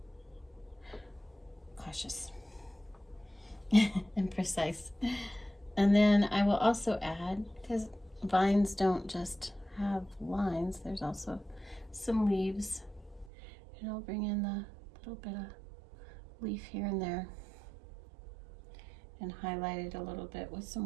cautious and precise. And then I will also add, because vines don't just have lines, there's also some leaves. And I'll bring in the little bit of leaf here and there. and highlight it a little bit with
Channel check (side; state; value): left; drops out; at 13.3 s